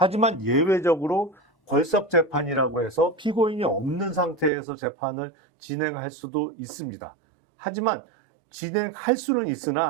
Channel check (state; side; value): drops out; left; at 4.5 s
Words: 예외적으로 걸석 재판이라고 해서 피고인이 없는 상태에서 재판을 진행할 수도 있습니다. 하지만 진행할 수는